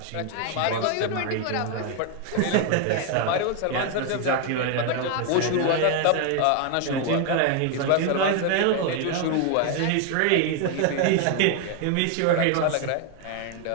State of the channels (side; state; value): both; different; correlation 0.01